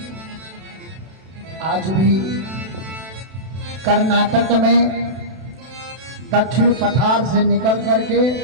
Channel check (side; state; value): left; late; 32 ms